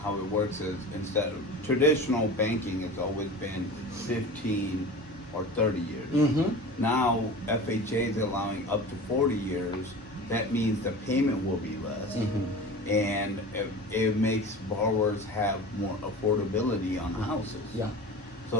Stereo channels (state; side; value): normal; both; correlation 0.35